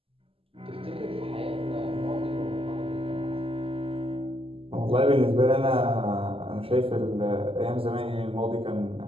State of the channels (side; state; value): left; late; 0.27 ms